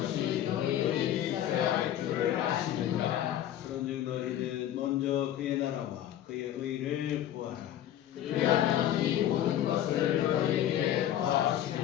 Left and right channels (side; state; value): right; quieter; 11.7 dB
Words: 너희에게 있어야 할 줄을 아시느니라. 그런즉 너희는 먼저 그의 나라와 그의 의를 구하라. 그리하면 이 모든 것을 너희에게